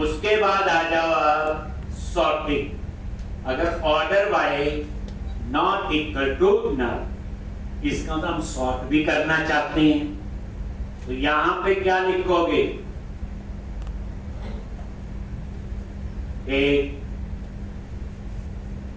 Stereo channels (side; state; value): both; identical; correlation 1.00